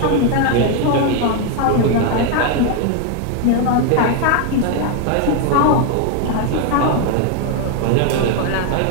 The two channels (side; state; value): both; different; correlation 0.01